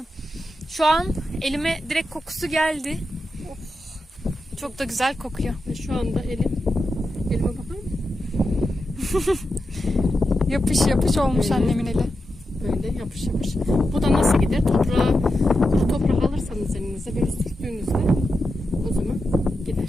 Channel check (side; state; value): both; normal; correlation 0.89